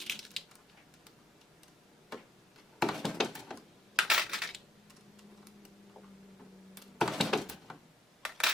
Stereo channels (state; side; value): normal; both; correlation 0.72